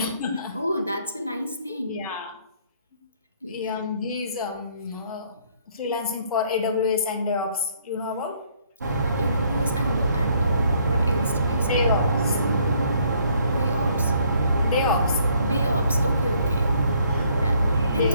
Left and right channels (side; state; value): both; inverted; correlation -0.65